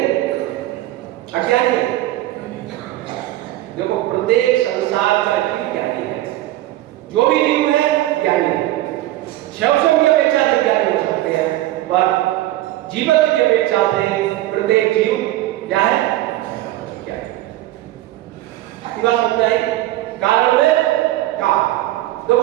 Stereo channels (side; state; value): left; quieter; 15.6 dB